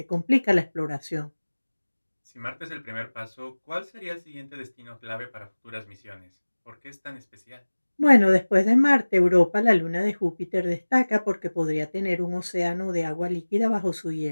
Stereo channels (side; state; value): both; inverted; correlation -1.00